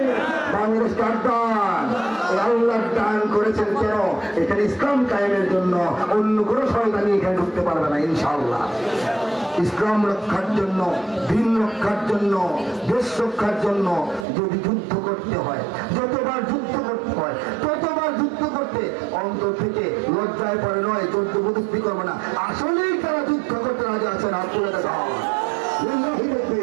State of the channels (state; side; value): drops out; left; at 14.2 s